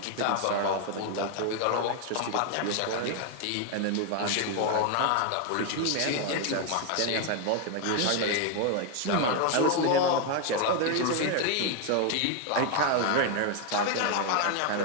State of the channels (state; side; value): different; both; correlation 0.01